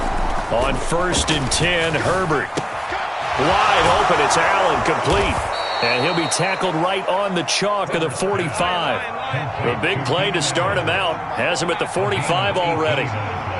On 1st and 10, Herbert. Wide open, it's Allen, complete. And he'll be tackled right on the chalk of the 45. A big play to start him out. Has him at the 45 already.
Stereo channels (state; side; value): identical; both; correlation 1.00